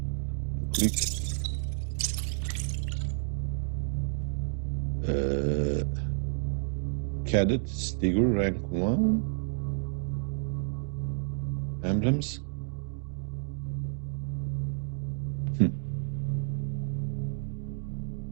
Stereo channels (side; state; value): left; silent; digital silence